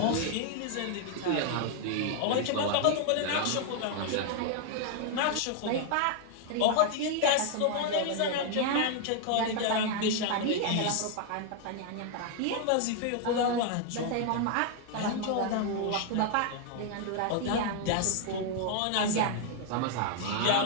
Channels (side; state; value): both; different; correlation 0.00